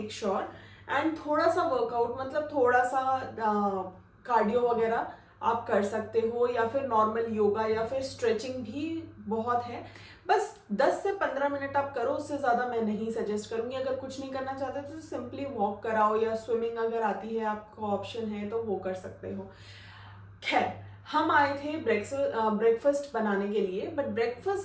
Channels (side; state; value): both; identical; correlation 1.00